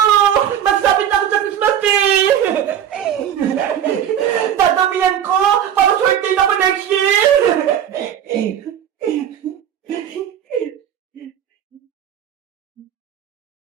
Magsabit ako sa Christmas tree! Dadamihan ko para swerte na ako next year!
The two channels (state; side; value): quieter; left; 9.8 dB